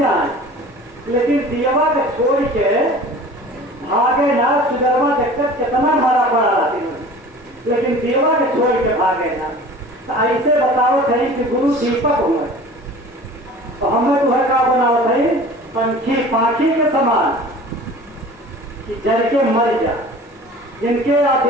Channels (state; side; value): normal; both; correlation 0.42